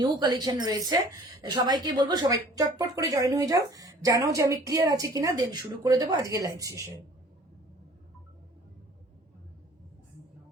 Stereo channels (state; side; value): normal; both; correlation 0.50